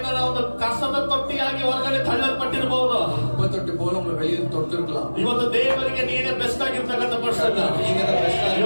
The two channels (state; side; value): inverted; both; correlation -1.00